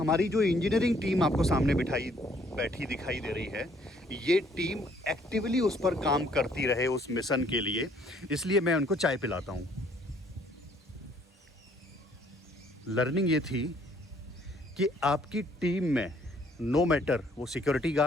जो इंजीनियरिंग टीम आपको सामने बैठी दिखाई दे रही है, ये टीम एक्टिवली उस पर काम करती रहे उस मिशन के लिए, इसलिए मैं उनको चाय पिलाता हूँ। लर्निंग ये थी कि आपकी टीम में नो मैटर वो सिक्योरिटी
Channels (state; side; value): normal; both; correlation 0.63